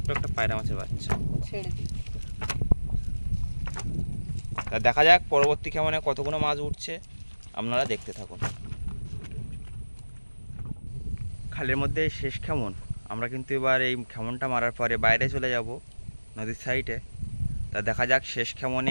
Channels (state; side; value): inverted; both; correlation -1.00